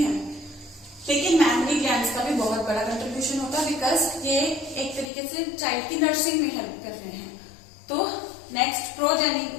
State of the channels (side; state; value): right; drops out; at 5.1 s